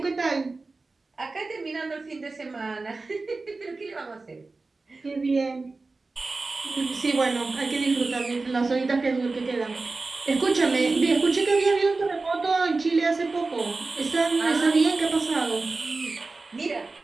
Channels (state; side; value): quieter; left; 3.7 dB